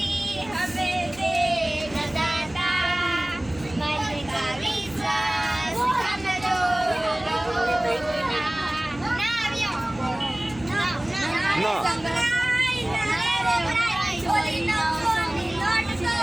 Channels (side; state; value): right; noise; hum, 20 dB below the sound